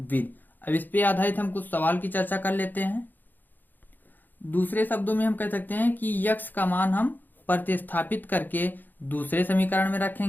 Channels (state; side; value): late; right; 0.088 ms